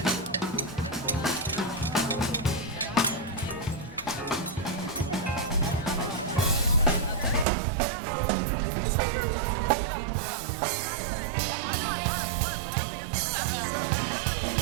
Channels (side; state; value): left; drops out; at 7.5 s